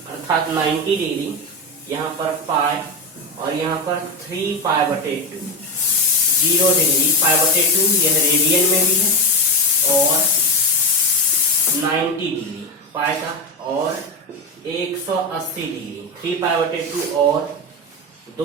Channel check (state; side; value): normal; both; correlation 0.16